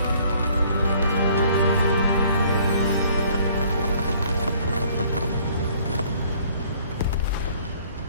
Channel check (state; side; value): inverted; both; correlation -0.59